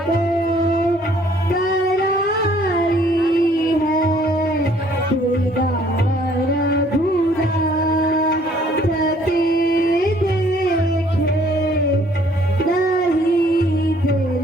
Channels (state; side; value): normal; both; correlation 0.61